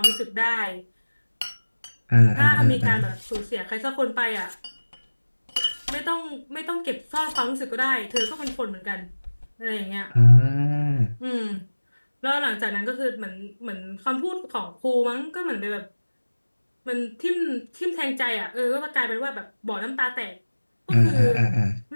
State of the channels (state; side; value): inverted; both; correlation -1.00